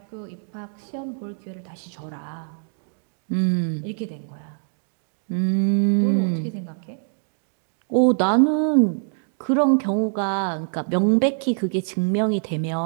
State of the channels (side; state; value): left; silent; digital silence